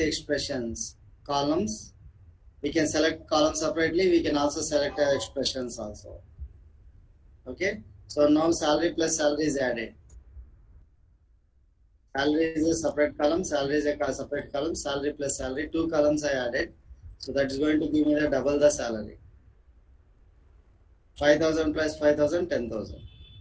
expressions columns. We can select columns separately. We can also select expressions also. Okay. So now salary plus salary is added. Salary is a separate column. Salary is a separate column. Salary plus salary. Two columns I added. So that's going to give me the double the salary. 5,000 plus 5,000, 10,000.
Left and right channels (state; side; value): identical; both; correlation 1.00